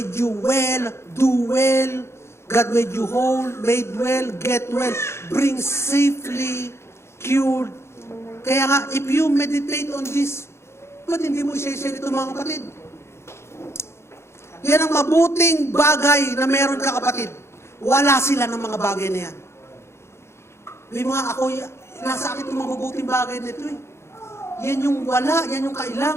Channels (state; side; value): late; right; 0.13 ms